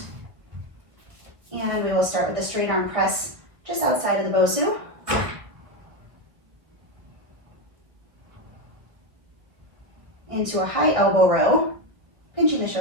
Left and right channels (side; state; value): left; late; 1.4 ms